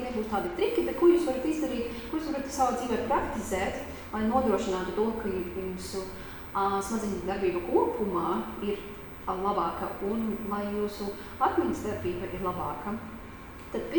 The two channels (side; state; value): both; identical; correlation 1.00